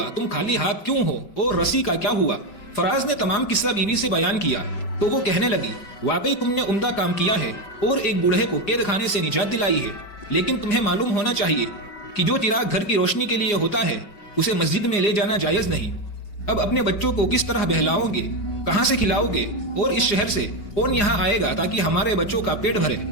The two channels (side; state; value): right; late; 5.2 ms